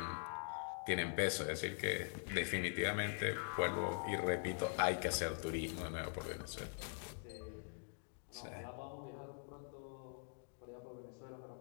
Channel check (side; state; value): right; silent; digital silence